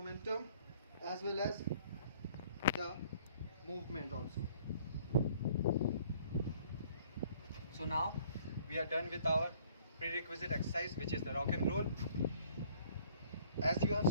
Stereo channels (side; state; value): both; inverted; correlation -0.58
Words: as well as the movement also. So now we are done with our prerequisite exercise, which is the rock and roll. As you have